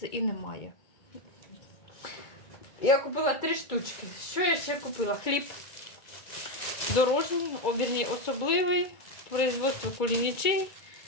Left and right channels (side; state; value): right; late; 2.2 ms